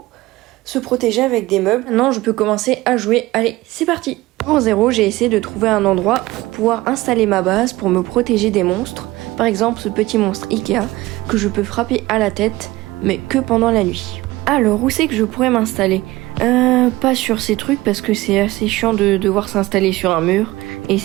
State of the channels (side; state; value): left; quieter; 18.8 dB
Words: se protéger avec des meubles. Maintenant, je peux commencer à jouer. Allez, c'est parti! Pour 0, j'ai essayé de trouver un endroit pour pouvoir installer ma base pour me protéger des monstres. Par exemple, ce petit monstre Ikea que je peux frapper à la tête, mais que pendant la nuit. Alors, où c'est que je pourrais m'installer? Pas sur ces trucs parce que c'est assez chiant de devoir s'installer sur un mur et